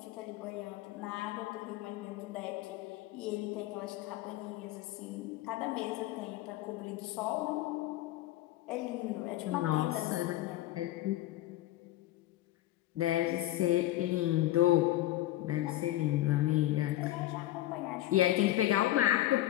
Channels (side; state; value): right; quieter; 15.1 dB